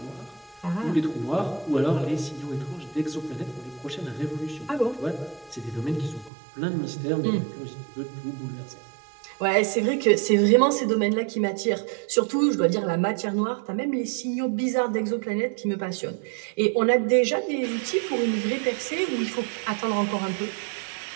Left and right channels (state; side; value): drops out; left; at 6.3 s